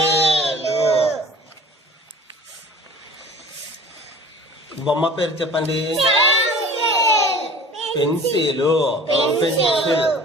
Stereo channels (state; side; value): normal; both; correlation 0.45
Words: బొమ్మ పేరు చెప్పండి. పెన్సిల్. పెన్సిల్.